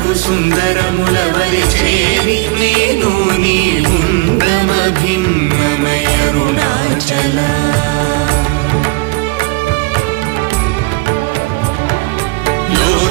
సుందరముల వలి చేరి నేను నీ గుండమ భిన్నమయ అరుణాచల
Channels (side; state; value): left; quieter; 25.1 dB